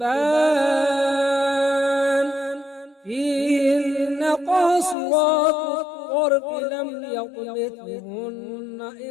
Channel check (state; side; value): drops out; right; at 5.0 s